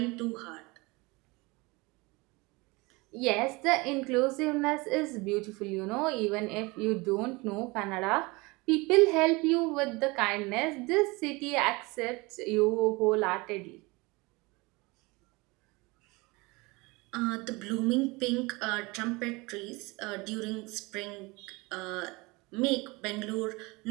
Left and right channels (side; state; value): left; quieter; 24.7 dB